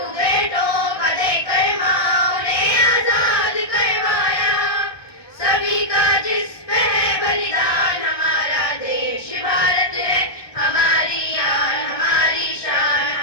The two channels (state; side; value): late; right; 1.2 ms